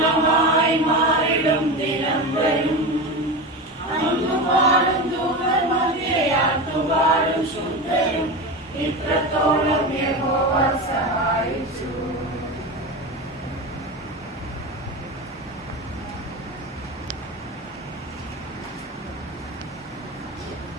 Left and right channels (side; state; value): both; normal; correlation 0.23